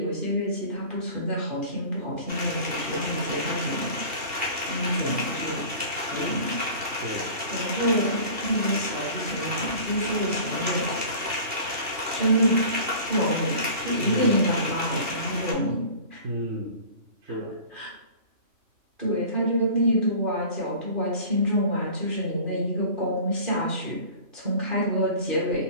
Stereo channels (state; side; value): late; left; 2.8 ms